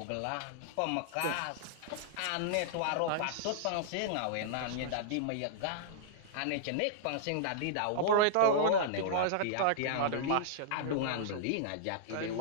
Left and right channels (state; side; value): different; both; correlation -0.01